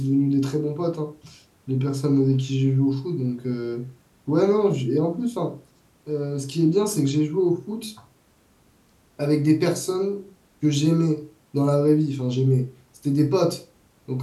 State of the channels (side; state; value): both; identical; correlation 1.00